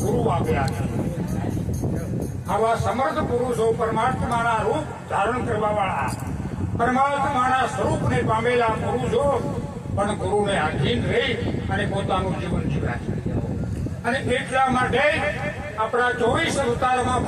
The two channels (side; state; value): both; identical; correlation 1.00